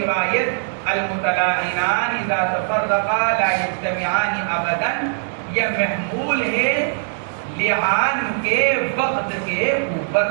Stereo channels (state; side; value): silent; left; digital silence